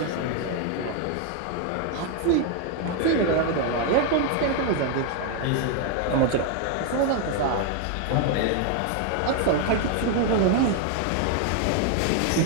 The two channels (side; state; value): both; different; correlation 0.01